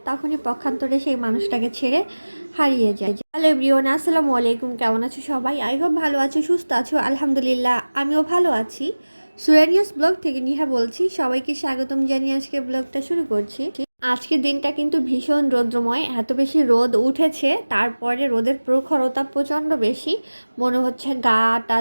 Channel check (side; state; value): both; inverted; correlation -1.00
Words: তখনই পক্ষান্তরে সেই মানুষটাকে ছেড়ে হারিয়ে যায়। হ্যালো এভরিওয়ান, আসসালামু আলাইকুম। কেমন আছো সবাই? আই হোপ ভালো আছো, সুস্থ আছো। আলহামদুলিল্লাহ, আমিও ভালো আছি। সুরানিয়াস ব্লগ থেকে নিহা বলছি। সবাইকে স্বাগতম জানিয়ে আজকে ব্লগটা শুরু করছি। আজকের দিনটা কিন্তু ভীষণ রৌদ্রময়, এত বেশি রোদ উঠেছে, তারপরে রোদের প্রখরতা প্রচণ্ড বেশি, মনে হচ্ছে গাটা